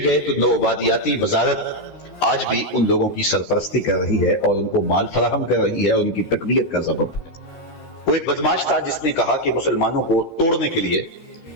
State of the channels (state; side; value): late; right; 13 ms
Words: گئے تو نو آبادیاتی وزارت آج بھی ان لوگوں کی سرپرستی کر رہی ہے اور ان کو مال فراہم کر رہی ہے اور ان کی تقویت کا سبب. وہ ایک بدماش تھا جس نے کہا کہ مسلمانوں کو توڑنے کے لیے